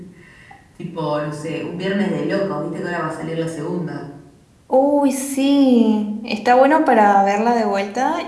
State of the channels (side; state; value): both; identical; correlation 1.00